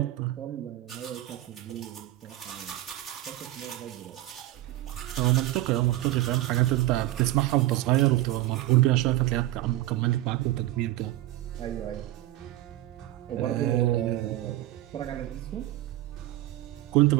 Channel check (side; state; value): left; quieter; 15.8 dB